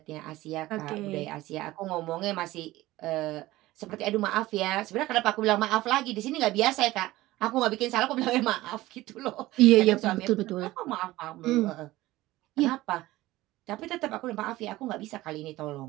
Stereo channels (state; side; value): quieter; left; 17.5 dB